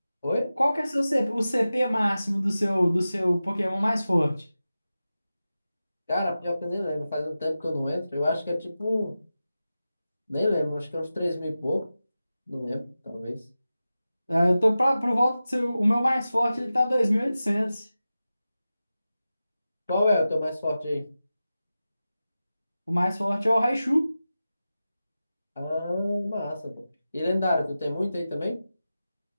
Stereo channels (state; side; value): inverted; both; correlation -0.94